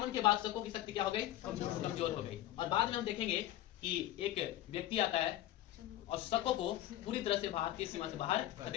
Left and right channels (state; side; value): quieter; right; 13.7 dB